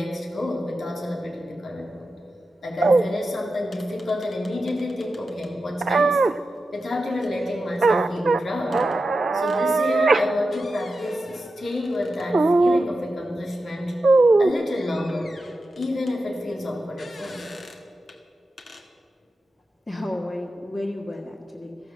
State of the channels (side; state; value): both; normal; correlation 0.91